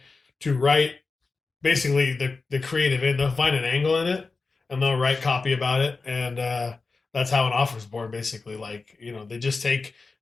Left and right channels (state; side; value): quieter; right; 4.1 dB